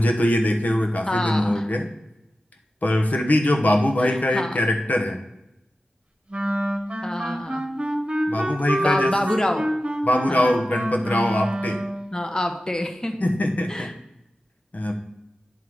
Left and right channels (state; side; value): normal; both; correlation 0.93